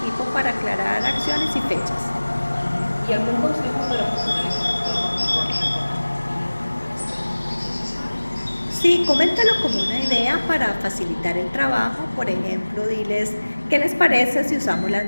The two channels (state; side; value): inverted; both; correlation -1.00